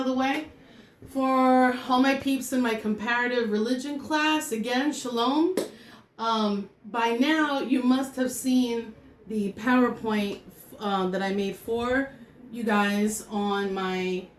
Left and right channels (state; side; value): identical; both; correlation 1.00